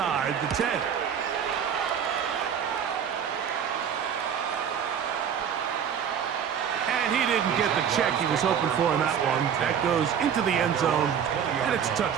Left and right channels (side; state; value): left; quieter; 8.1 dB